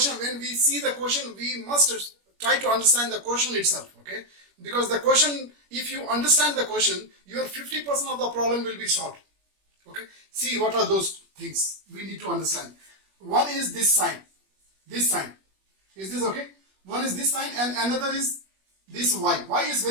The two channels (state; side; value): late; left; 21 ms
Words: when we see the question, we must try to understand the question itself, okay? Because the question, if you understand the question, your 50% of the problem will be solved. Okay? See what are those things we need to understand. One is this sign. This sign. Is this okay? One is this sign and another is this y. Y is